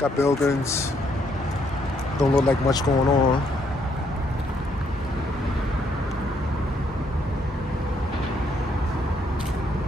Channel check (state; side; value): normal; both; correlation 0.72